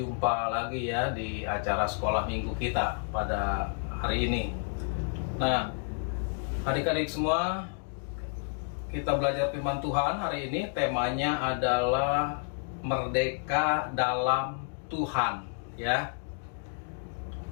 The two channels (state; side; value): silent; right; 58 dB below the other